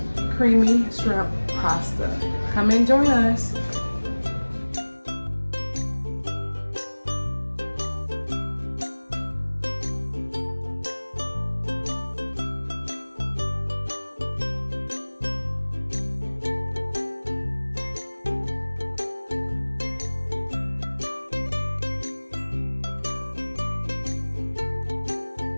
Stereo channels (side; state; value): both; inverted; correlation -1.00